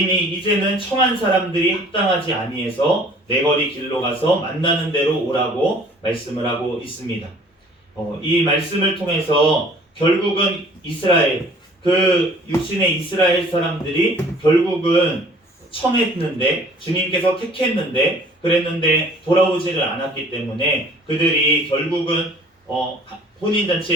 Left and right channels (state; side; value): normal; both; correlation 0.52